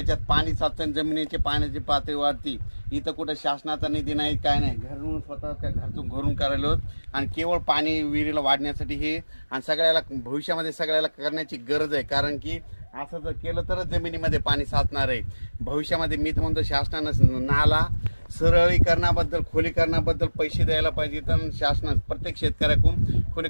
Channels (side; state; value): both; inverted; correlation -1.00